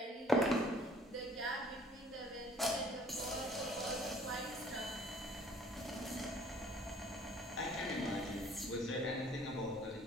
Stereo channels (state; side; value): normal; both; correlation 0.56